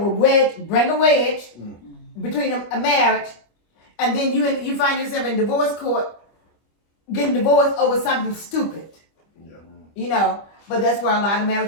bring a wedge between a marriage, and then you find yourself in divorce court getting divorced over something stupid. Yeah. You know, but that's where a lot of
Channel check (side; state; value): right; late; 25 ms